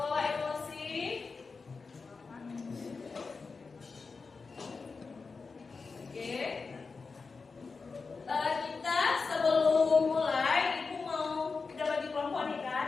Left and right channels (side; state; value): right; quieter; 4.5 dB